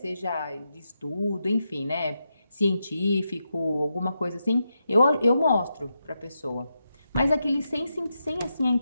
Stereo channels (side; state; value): both; inverted; correlation -0.86